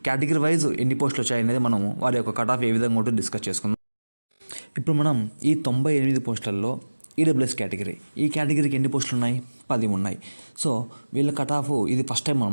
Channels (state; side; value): inverted; both; correlation -1.00